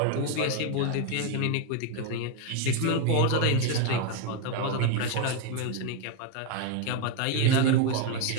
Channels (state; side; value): different; both; correlation 0.01